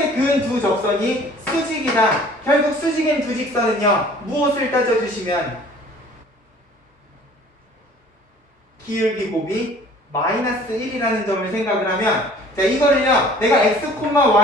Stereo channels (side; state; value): both; normal; correlation 0.51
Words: 그은 두 접선이 수직이다. 결국 수직인 두 직선은요 무엇을 따져주시면 기울기 곱이 마이너스 1이라는 점을 생각을 하면 자, 이거를요, 내가 x,